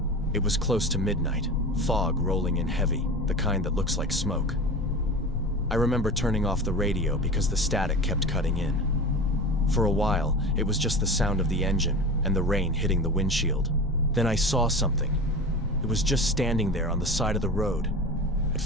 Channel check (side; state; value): both; normal; correlation 0.31